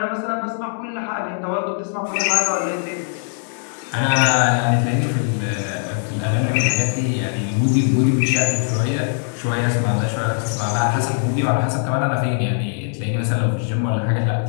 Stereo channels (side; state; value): right; silent; digital silence